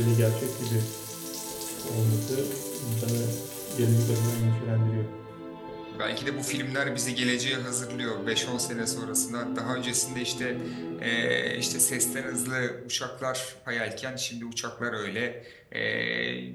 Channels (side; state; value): both; identical; correlation 1.00